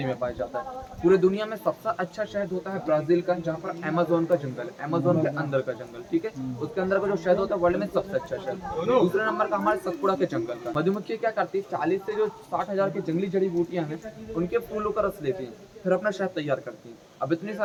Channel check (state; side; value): identical; both; correlation 1.00